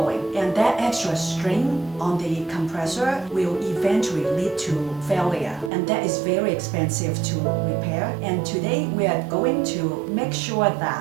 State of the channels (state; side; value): drops out; left; at 5.7 s